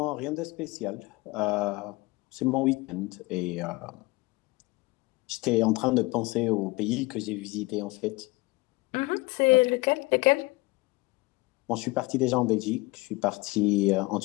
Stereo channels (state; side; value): quieter; right; 22.8 dB